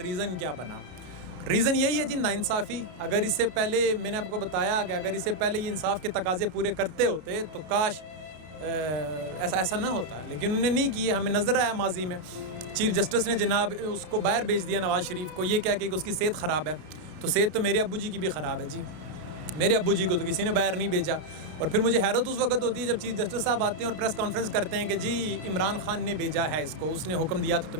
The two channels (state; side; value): late; left; 33 ms